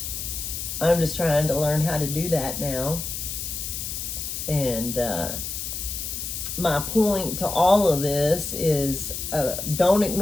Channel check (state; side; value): noise; left; hiss, 5 dB below the sound